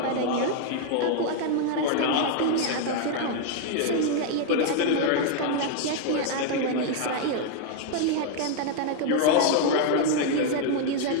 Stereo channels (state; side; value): different; both; correlation 0.00